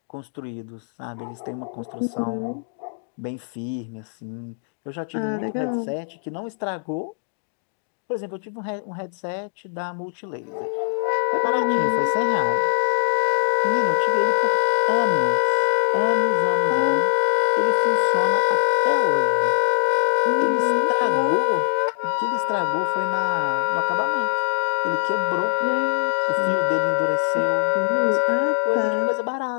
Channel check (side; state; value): right; silent; digital silence